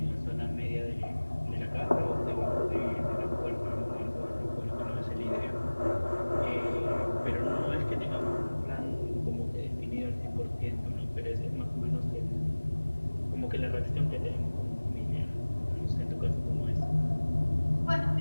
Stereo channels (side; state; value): both; inverted; correlation -1.00